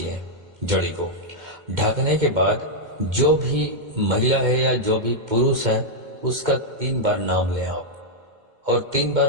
जड़ी को ढकने के बाद जो भी महिला है या जो भी पुरुष है उसका 3 बार नाम लें आप, और 3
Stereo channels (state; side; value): late; left; 2.1 ms